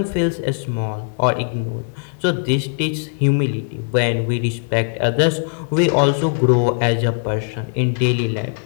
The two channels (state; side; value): silent; right; 66 dB below the other